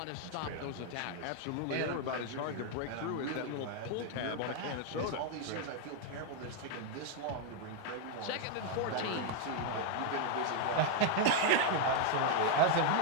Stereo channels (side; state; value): both; different; correlation 0.01